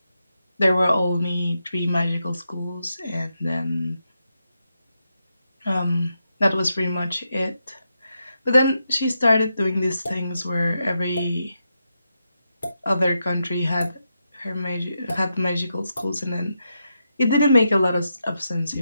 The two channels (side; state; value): both; inverted; correlation -0.85